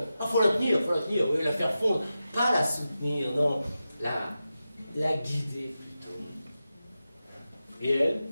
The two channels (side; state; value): both; inverted; correlation -0.92